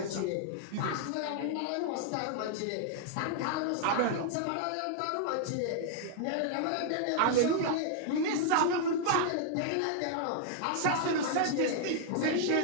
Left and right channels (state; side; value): different; both; correlation -0.01